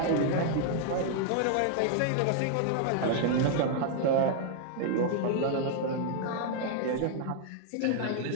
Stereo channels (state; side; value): different; both; correlation 0.00